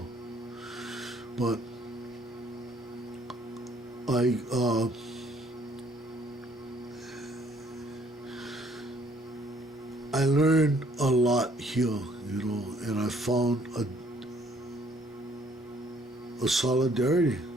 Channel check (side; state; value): both; normal; correlation 0.63